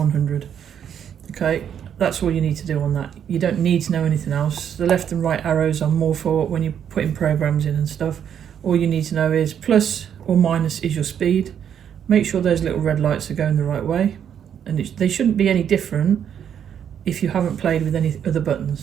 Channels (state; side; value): quieter; left; 8.8 dB